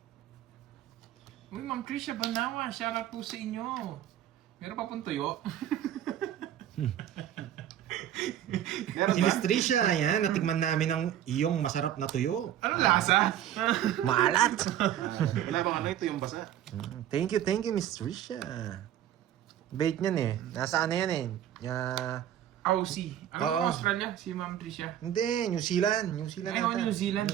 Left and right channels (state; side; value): quieter; left; 11.2 dB